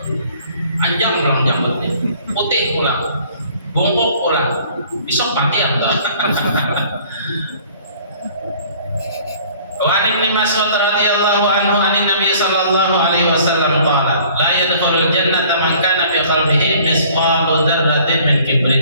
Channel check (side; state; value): both; inverted; correlation -0.54